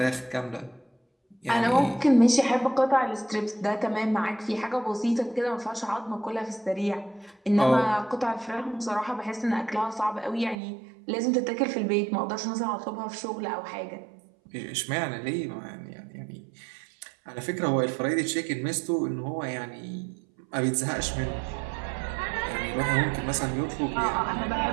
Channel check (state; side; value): drops out; left; at 10.6 s